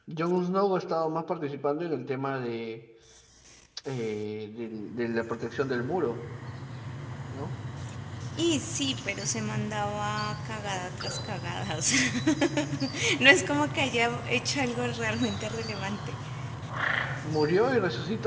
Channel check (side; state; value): both; identical; correlation 1.00